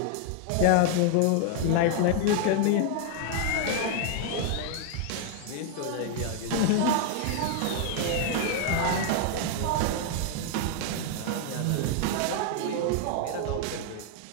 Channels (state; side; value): different; both; correlation 0.00